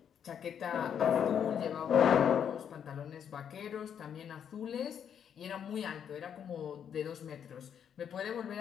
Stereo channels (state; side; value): quieter; right; 8.4 dB